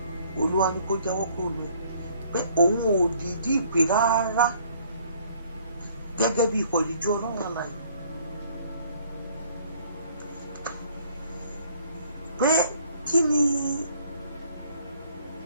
Olúwa ní kó jáwọ́ kúrò lọ pé òun ò dìídì ìpè rárá gẹ́gẹ́ bí ikọ̀ ìríjú ọlọ́run àlàyé pé kí ni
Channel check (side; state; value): both; inverted; correlation -0.60